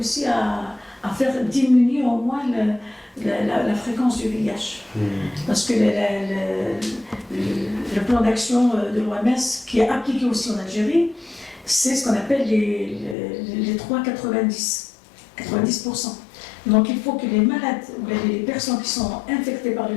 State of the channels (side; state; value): right; drops out; at 13.2 s